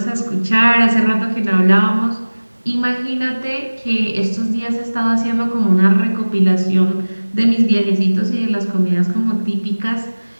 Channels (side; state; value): both; inverted; correlation -1.00